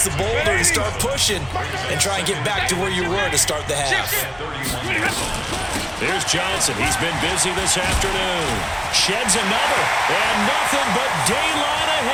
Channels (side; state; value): both; identical; correlation 1.00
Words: the boulder and start pushing and try and get back to where you were to start the half. Here's Johnson. He's been busy this afternoon. Sheds another, and nothing but daylight